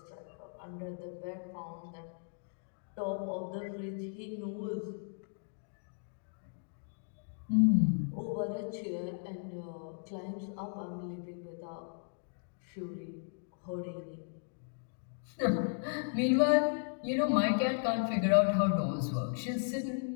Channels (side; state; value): right; silent; digital silence